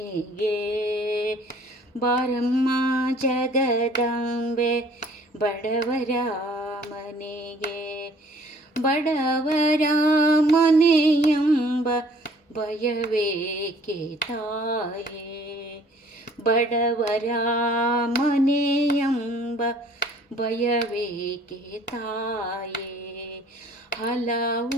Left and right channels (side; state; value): both; normal; correlation 0.56